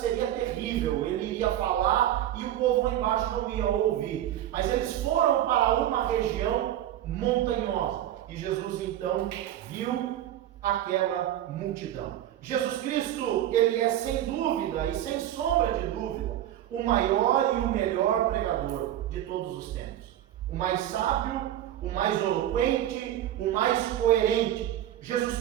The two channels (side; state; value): left; quieter; 12.2 dB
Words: terrível. Ele iria falar e o povo lá embaixo não ia ouvir. Mas eles foram para uma região montanhosa e Jesus então viu aquela multidão. Jesus Cristo, Ele é sem dúvida e sem sombra de dúvida o maior e o melhor pregador de todos os tempos. O mais sábio, o mais eloquente, o mais coerente.